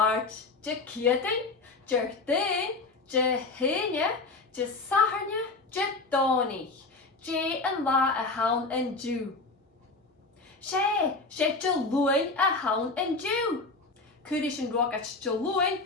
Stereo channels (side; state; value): right; quieter; 3.6 dB